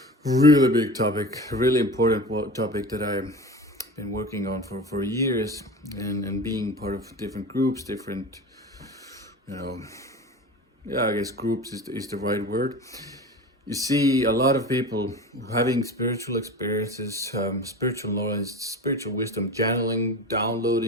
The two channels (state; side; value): normal; both; correlation 0.33